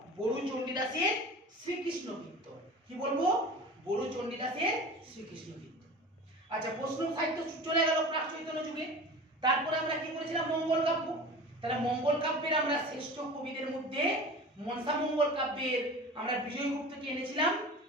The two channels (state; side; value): normal; both; correlation 0.36